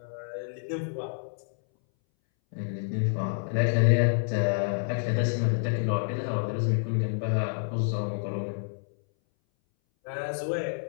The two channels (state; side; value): silent; right; 59 dB below the other